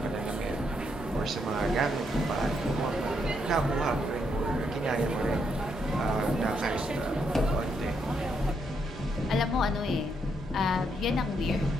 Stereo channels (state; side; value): normal; both; correlation 0.77